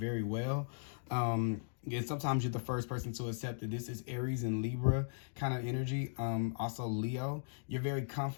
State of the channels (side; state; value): right; silent; digital silence